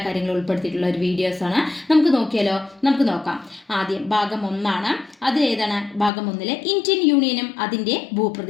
കാര്യങ്ങളും ഉൾപ്പെടുത്തിയിട്ടുള്ള ഒരു വീഡിയോസാണ്. നമുക്ക് നോക്കിയാലോ? നമുക്ക് നോക്കാം. ആദ്യം ഭാഗം 1 അതിലേതാണ്? ഭാഗം 1 ഇന്ത്യൻ യൂണിയനും അതിൻ്റെ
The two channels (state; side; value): drops out; right; at 6.1 s